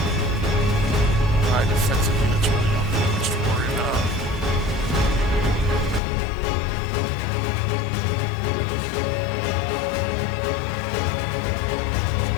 my defensive units really don't have much to worry about. Does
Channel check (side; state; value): right; drops out; at 6.0 s